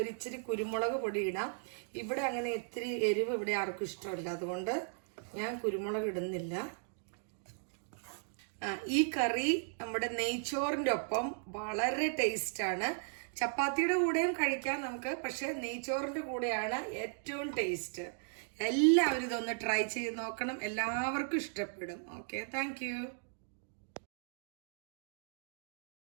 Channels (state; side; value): silent; left; digital silence